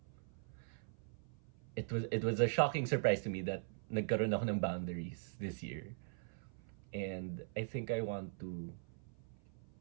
It was a shocking surprise to me that nagkaroon ako ng boundaries this year, and I think I want to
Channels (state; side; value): silent; left; 50 dB below the other